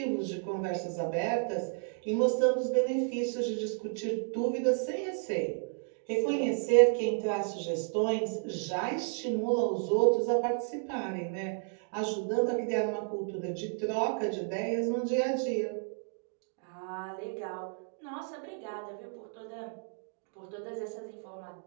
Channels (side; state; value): left; silent; 56 dB below the other